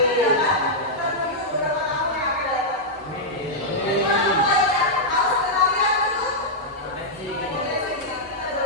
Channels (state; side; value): normal; both; correlation -0.07